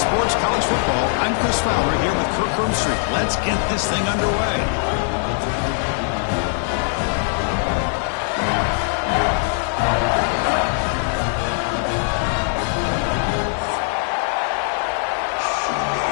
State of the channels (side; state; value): right; silent; 65 dB below the other